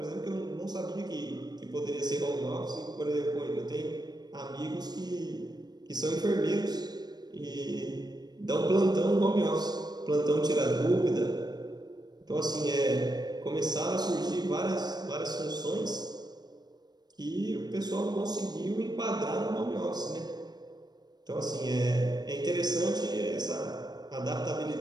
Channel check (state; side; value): late; left; 0.20 ms